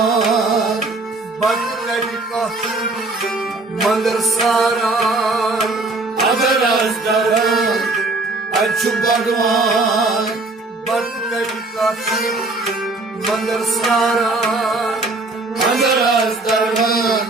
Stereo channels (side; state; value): left; quieter; 3.2 dB